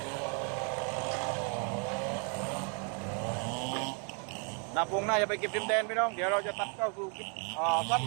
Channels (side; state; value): left; quieter; 38.7 dB